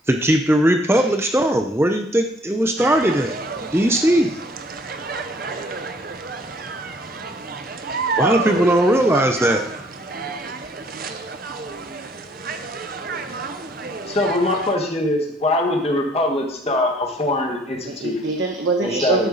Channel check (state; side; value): normal; both; correlation 0.60